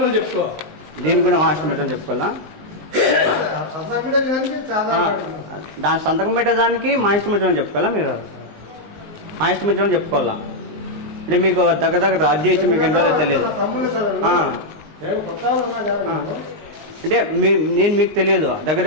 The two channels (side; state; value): left; late; 19 ms